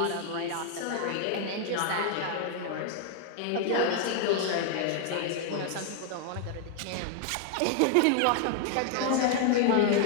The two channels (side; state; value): both; different; correlation 0.00